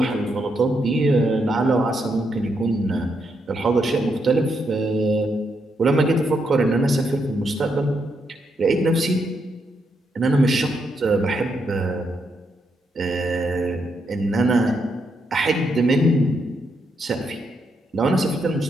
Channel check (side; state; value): both; normal; correlation 0.79